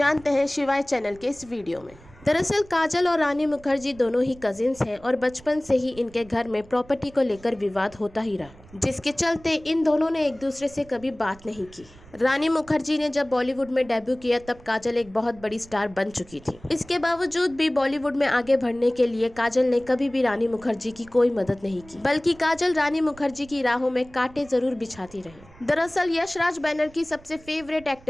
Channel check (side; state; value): right; noise; rumble, 23 dB below the sound